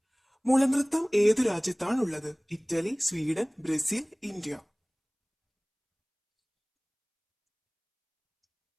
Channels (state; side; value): identical; both; correlation 1.00